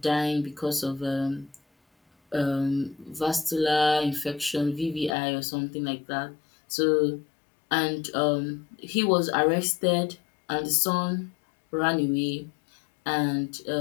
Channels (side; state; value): right; drops out; at 5.2 s